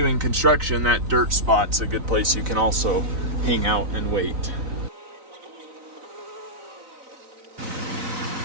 construction, that dirt spot's a good place you can also hang out and wait.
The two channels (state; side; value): late; left; 3.9 ms